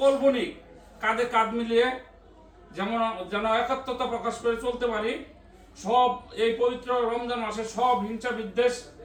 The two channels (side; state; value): both; identical; correlation 1.00